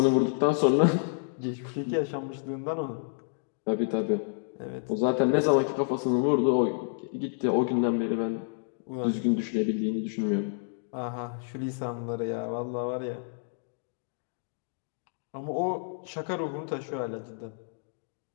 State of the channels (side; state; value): right; silent; digital silence